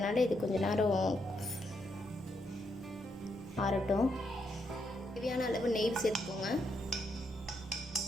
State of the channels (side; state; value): both; normal; correlation 0.79